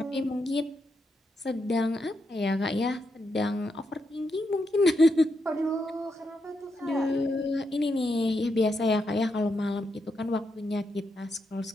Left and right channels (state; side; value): normal; both; correlation 0.83